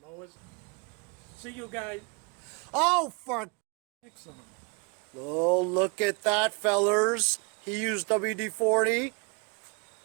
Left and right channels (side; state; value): left; quieter; 32.5 dB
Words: Mowers. See you guys. Oh, for... Excellent. Oh, look at that, fellers. He used WD-40.